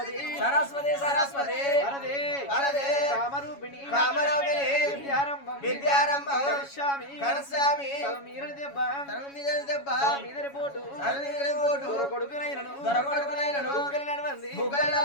సరస్వతి సరస్వతి వరదే వరదే కామరూపిణి కామరూపిణి విద్యారంభం విద్యారంభం కరిష్యామి కరిష్యామి తలమీదని దెబ్బ తలమీదని దెబ్బ మీదని పోటు తలమీదని పోటు కొడుకునైనను దొరకొడుకునైనను నడవంది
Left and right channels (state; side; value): late; right; 7.2 ms